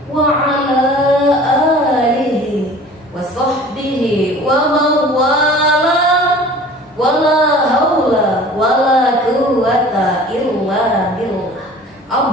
wa ala alihi wa sahbihi wa mawala wa la hawla wa la quwwata illa billah.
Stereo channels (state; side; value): normal; both; correlation 0.45